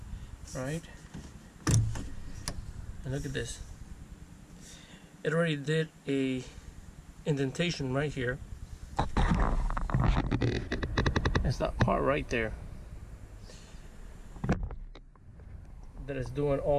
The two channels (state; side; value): identical; both; correlation 1.00